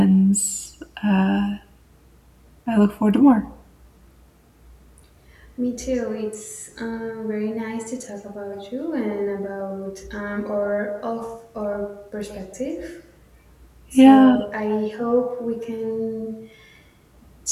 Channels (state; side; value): identical; both; correlation 1.00